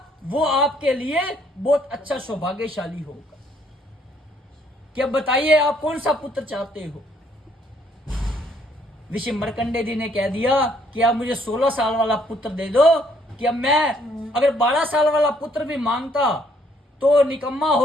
वो आपके लिए बहुत अच्छा सौभाग्यशाली होगा। क्या बताइए आप कौन सा पुत्र चाहते हो? ऋषि मरकंडे जी ने कह दिया कि आप मुझे 16 साल वाला पुत्र दे दो, कि अब मैं अगर 12 साल वाला पुत्र भी मांगता तो निकम्मा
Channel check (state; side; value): normal; both; correlation 0.67